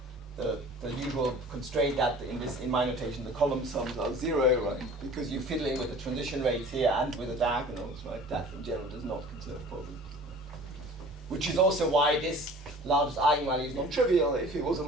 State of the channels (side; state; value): both; normal; correlation 0.45